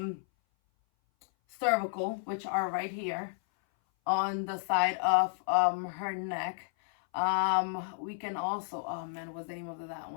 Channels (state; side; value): silent; right; 56 dB below the other